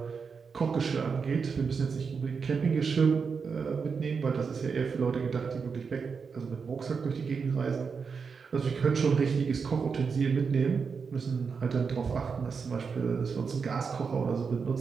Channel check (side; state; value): left; quieter; 5.6 dB